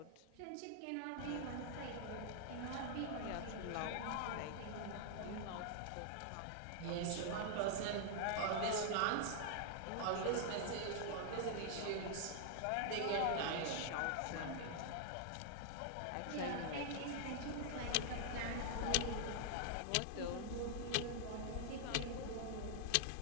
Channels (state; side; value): different; both; correlation -0.01